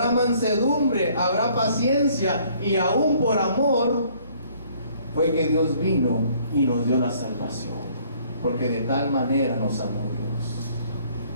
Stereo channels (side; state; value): both; inverted; correlation -0.61